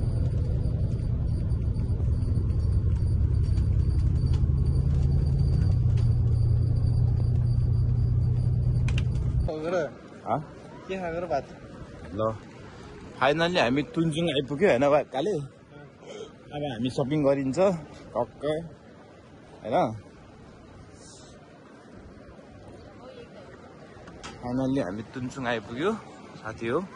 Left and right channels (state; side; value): identical; both; correlation 1.00